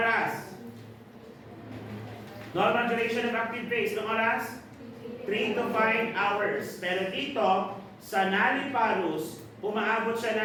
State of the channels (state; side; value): identical; both; correlation 1.00